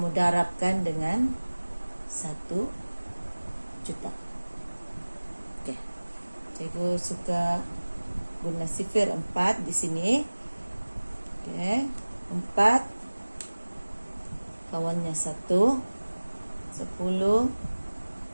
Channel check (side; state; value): both; inverted; correlation -1.00